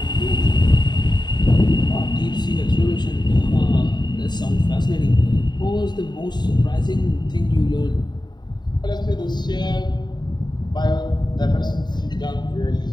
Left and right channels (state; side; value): late; right; 0.21 ms